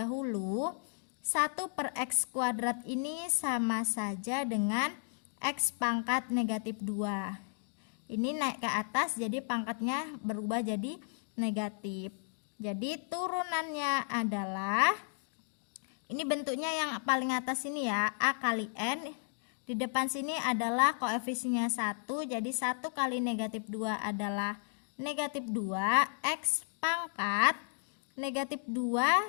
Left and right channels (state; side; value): silent; right; digital silence